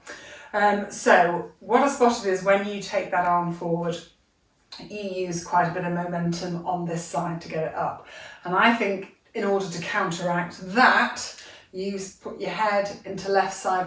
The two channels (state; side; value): identical; both; correlation 1.00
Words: So what I spotted is when you take that arm forward, you use quite a bit of momentum on this side to get it up. And I think in order to counteract that, you put your head into left side